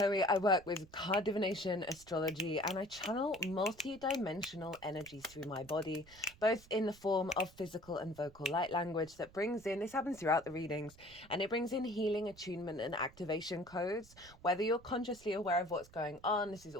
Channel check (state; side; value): noise; right; rumble, 23 dB below the sound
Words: I work with card divination, astrology, and I channel multi-dimensional energies through my body, both in the form of physical and vocal light language that brings in, this happens throughout the readings, and it brings in healing, attunement, and activation codes. Whether you're consciously aware of what's going on, this is